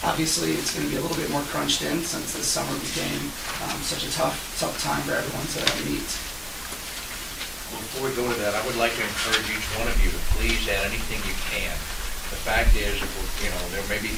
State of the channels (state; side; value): identical; both; correlation 1.00